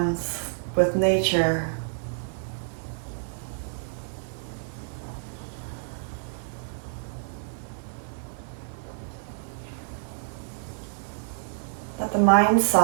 with nature. Let the mind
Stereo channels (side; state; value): left; silent; digital silence